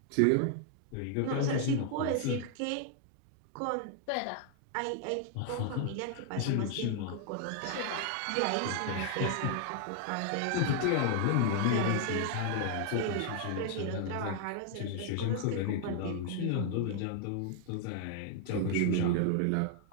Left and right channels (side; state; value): both; different; correlation 0.00